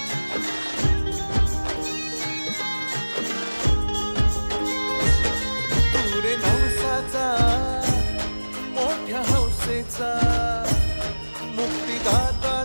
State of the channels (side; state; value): both; inverted; correlation -1.00